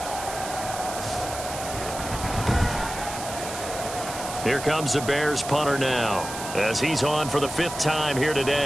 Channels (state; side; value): noise; right; hiss, 9 dB below the sound